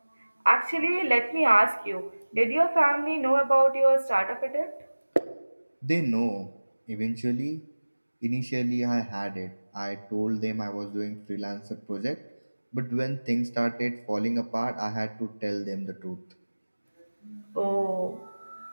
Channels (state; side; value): inverted; both; correlation -1.00